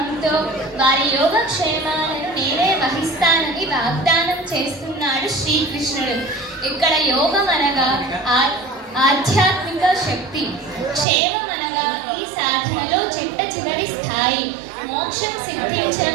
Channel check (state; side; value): drops out; left; at 11.1 s